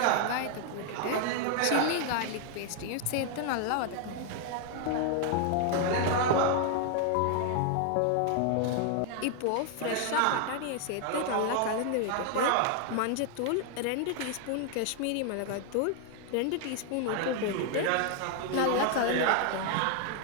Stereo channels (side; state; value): both; different; correlation 0.00